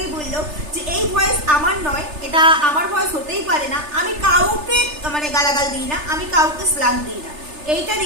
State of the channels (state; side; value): late; left; 3.3 ms